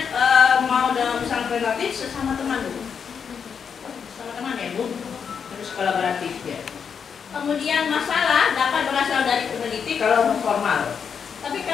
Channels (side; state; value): right; quieter; 6.8 dB